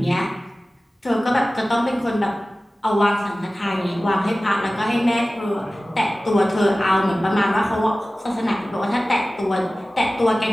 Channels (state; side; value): normal; both; correlation 0.97